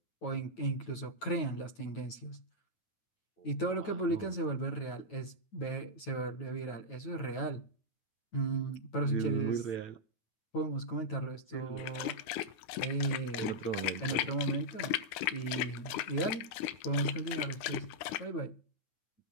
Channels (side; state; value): right; late; 9.9 ms